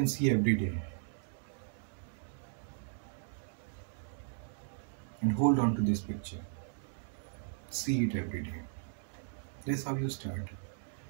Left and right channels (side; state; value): left; silent; digital silence